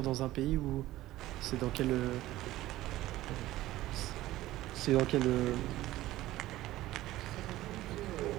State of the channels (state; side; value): quieter; left; 16.0 dB